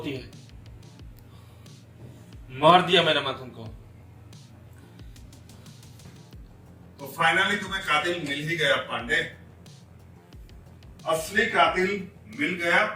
है। मार दिया मैंने मंथन को। तो फाइनली तुम्हें कातिल मिल ही गया पांडे। असली कातिल मिल गया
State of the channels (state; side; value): identical; both; correlation 1.00